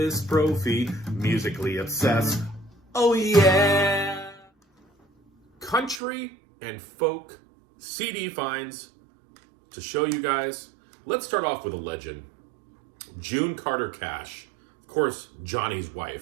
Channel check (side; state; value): left; drops out; at 6.0 s